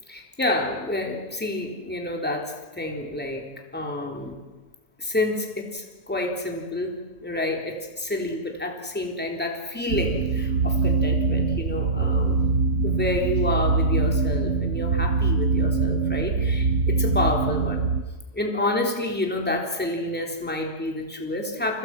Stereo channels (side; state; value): both; normal; correlation -0.16